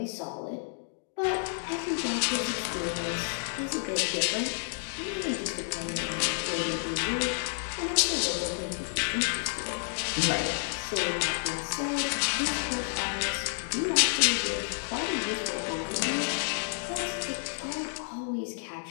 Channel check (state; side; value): silent; right; digital silence